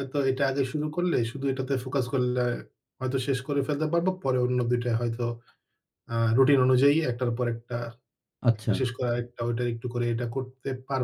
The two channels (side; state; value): both; identical; correlation 1.00